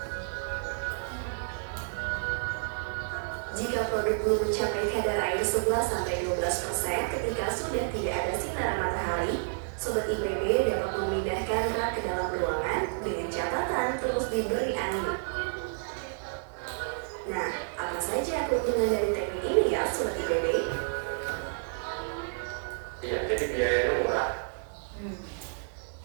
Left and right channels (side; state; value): left; silent; digital silence